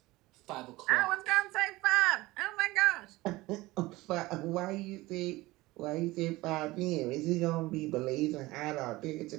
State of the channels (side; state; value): left; quieter; 19.8 dB